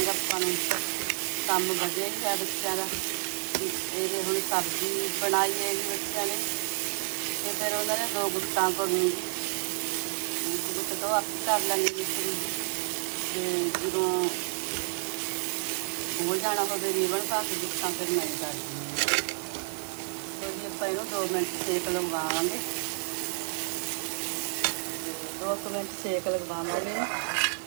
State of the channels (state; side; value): silent; left; digital silence